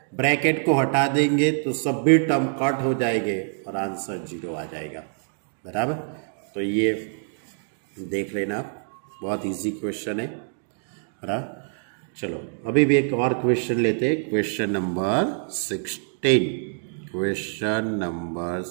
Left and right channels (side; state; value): left; silent; digital silence